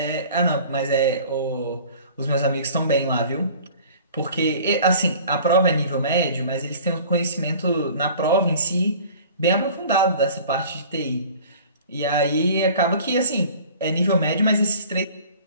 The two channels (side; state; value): both; inverted; correlation -0.46